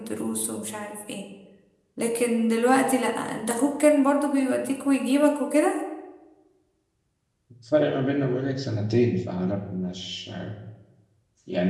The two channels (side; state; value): both; identical; correlation 1.00